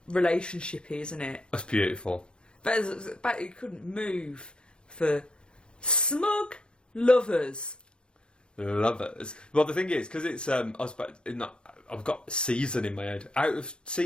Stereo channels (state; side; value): late; right; 0.052 ms